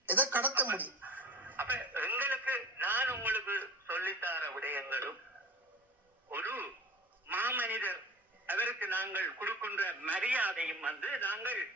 எதை கடத்த முடியும்? அப்ப எங்களுக்கு நான் உங்களுக்கு சொல்லித்தார விடயங்களும் ஒரு மாமனிதர் அவருக்கு நாங்கள் கொடுக்கின்ற மரியாதையும் வந்து நாங்கள்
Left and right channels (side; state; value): both; normal; correlation 0.35